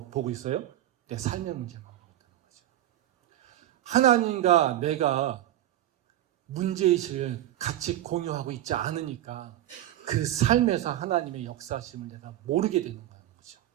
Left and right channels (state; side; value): quieter; left; 13.3 dB